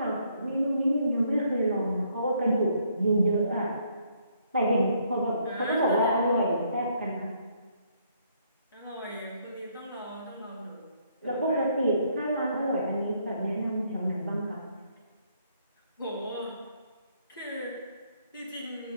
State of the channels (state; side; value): inverted; both; correlation -0.69